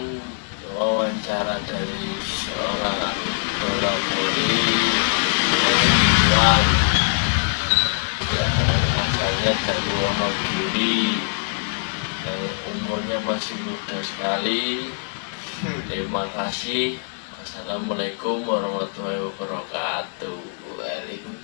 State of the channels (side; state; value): right; silent; 59 dB below the other